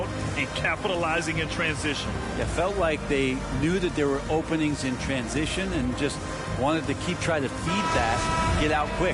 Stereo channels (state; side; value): identical; both; correlation 1.00